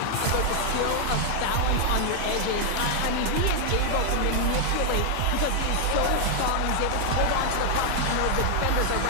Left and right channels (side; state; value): both; different; correlation 0.00